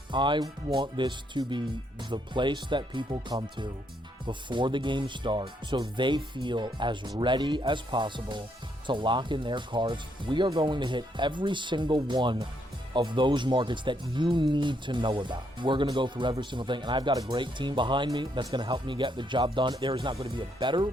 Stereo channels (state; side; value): normal; both; correlation 0.74